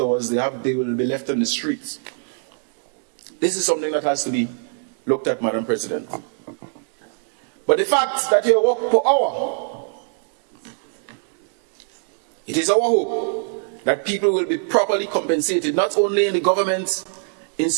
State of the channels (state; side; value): silent; left; digital silence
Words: they will be left on the streets. This is something that has to be looked at, Madam President. But the fact that you work per hour, it is our hope that people will be properly compensated, not only in the government